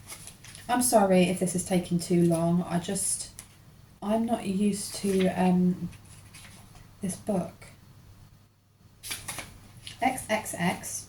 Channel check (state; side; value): identical; both; correlation 1.00